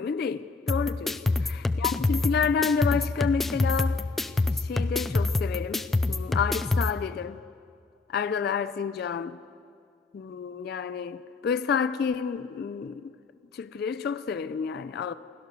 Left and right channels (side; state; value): right; quieter; 4.1 dB